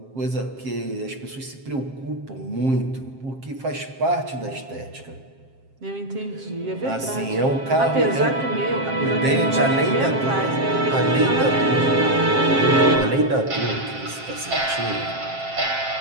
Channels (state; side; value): late; left; 7.5 ms